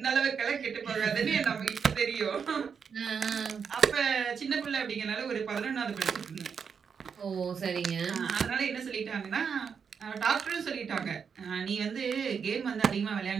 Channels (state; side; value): quieter; left; 6.5 dB